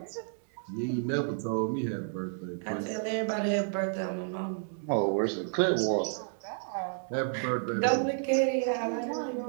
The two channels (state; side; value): silent; left; digital silence